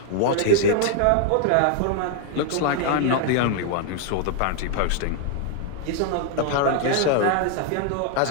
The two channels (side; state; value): both; different; correlation 0.00